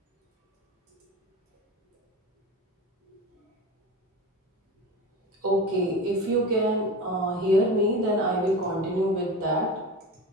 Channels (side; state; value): both; normal; correlation 0.28